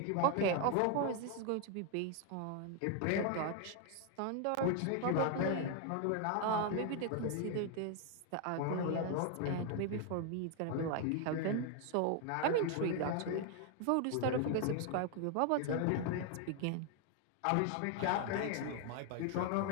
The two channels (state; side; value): different; both; correlation 0.00